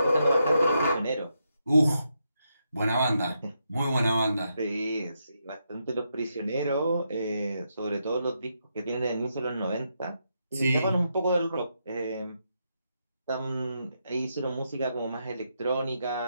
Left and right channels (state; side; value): inverted; both; correlation -0.82